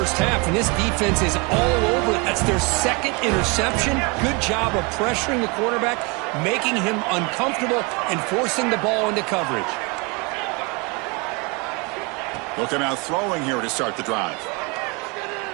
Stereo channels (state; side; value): quieter; left; 29.4 dB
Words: half, and this defense is all over it. That's their 2nd interception. Good job of pressuring the quarterback, making him uncomfortable, and forcing the ball into coverage. They'll come out throwing here to start the drive.